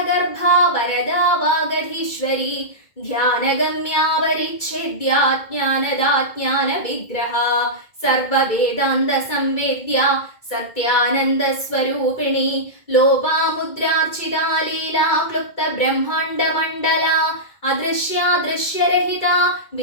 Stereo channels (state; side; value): late; right; 2.2 ms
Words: वरदा वागधीश्वरी ध्यानगम्या परिच्छेद्या ज्ञानदा ज्ञानविग्रहा सर्ववेदान्तसंवेद्या सत्यानन्दस्वरूपिणी लोपामुद्रार्चिता लीला क्लुप्तब्रह्माण्डमण्डला अदृश्यादृश्यरहिता